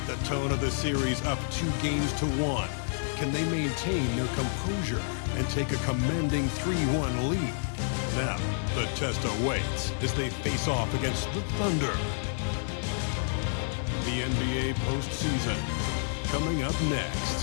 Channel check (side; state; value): right; silent; digital silence